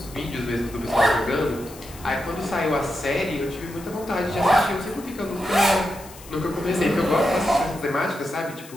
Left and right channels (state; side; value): noise; left; hiss, 19 dB below the sound